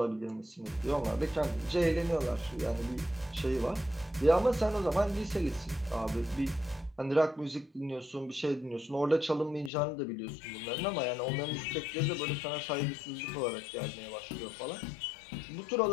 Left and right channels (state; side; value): drops out; right; at 9.7 s